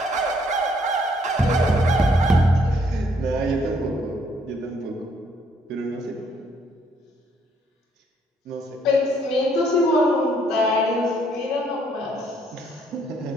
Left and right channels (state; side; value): normal; both; correlation 0.68